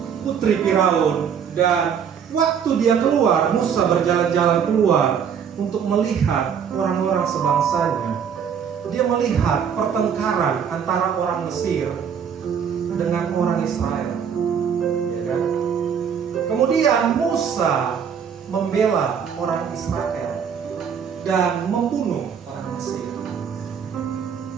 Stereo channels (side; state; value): left; quieter; 7.5 dB